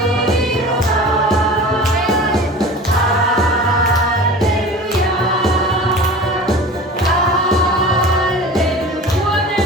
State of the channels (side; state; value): both; normal; correlation 0.37